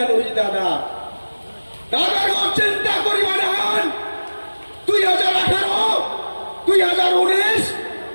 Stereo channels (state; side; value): inverted; both; correlation -1.00